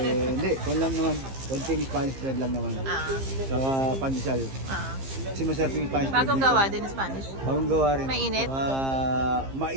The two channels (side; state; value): left; late; 15 ms